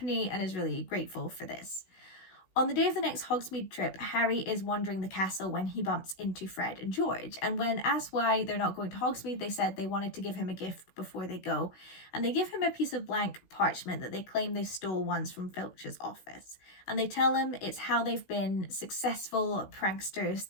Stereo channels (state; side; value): late; right; 16 ms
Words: and is really grateful for this. On the day of the next Hogsmeade trip, Harry is wandering the castle when he bumps into Fred and George. And when asked why they're not going to Hogsmeade, they said they wanted to give him a gift before they go. And they give him a piece of blank parchment that they claim they stole once from Filch's office. And they tell him it's how they've been successful pranksters